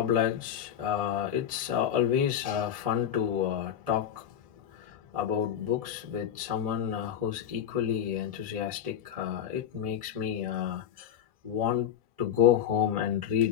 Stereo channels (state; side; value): quieter; right; 9.4 dB